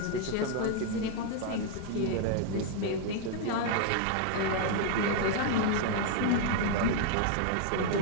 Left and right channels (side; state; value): both; different; correlation 0.00